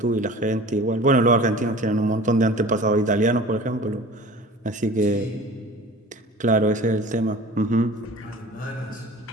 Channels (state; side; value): normal; both; correlation 0.41